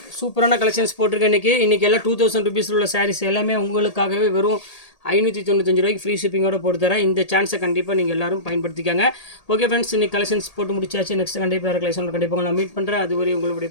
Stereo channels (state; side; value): late; right; 1.8 ms